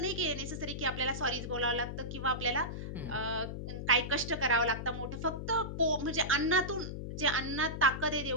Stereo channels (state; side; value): noise; left; hum, 6 dB below the sound